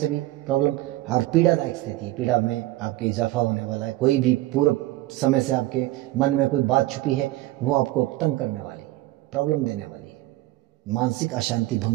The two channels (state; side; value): quieter; left; 17.3 dB